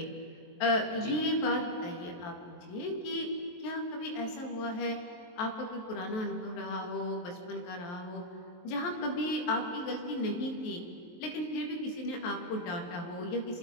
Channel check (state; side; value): late; right; 23 ms